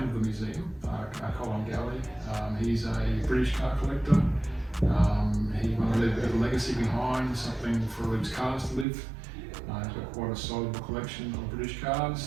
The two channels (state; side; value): drops out; left; at 8.8 s